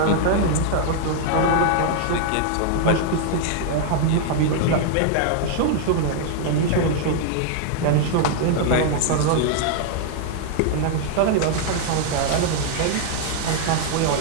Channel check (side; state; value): both; different; correlation 0.00